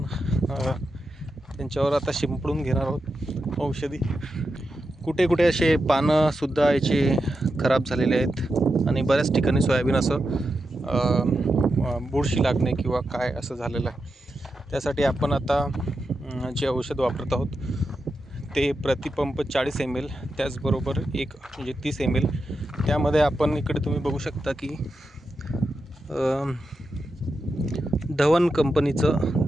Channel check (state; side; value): normal; both; correlation 0.88